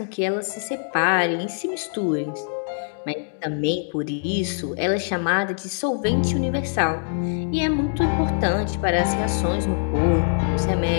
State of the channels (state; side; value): silent; right; digital silence